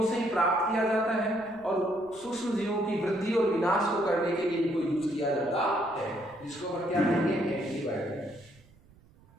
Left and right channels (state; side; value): noise; right; rumble, 27 dB below the sound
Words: से ही प्राप्त किया जाता है और सूक्ष्म जीवों की वृद्धि और विनाश को करने के लिए इनको यूज किया जाता है, जिसको हम क्या कहेंगे, एंटीबायोटिक।